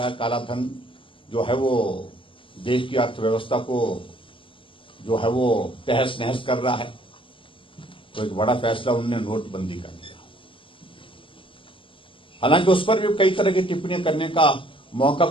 है, काला धन जो है वो देश की अर्थव्यवस्था को जो है वो तहस नहस कर रहा है। तो एक बड़ा फैसला उन्होंने नोटबंदी का लिया। हालांकि उस पर भी कई तरह की टिप्पणियां करने का मौका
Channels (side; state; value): right; late; 0.25 ms